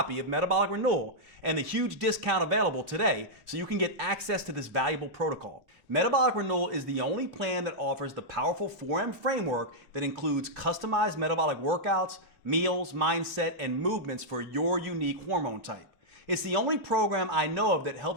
of Metabolic Renewal and the huge discount available today so you can get access to this valuable protocol. Metabolic Renewal is the only plan that offers the powerful 4M framework that includes customized metabolic workouts, meals, mindset, and movements for your unique hormone type. It's the only program I know of that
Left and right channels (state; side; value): late; left; 2.8 ms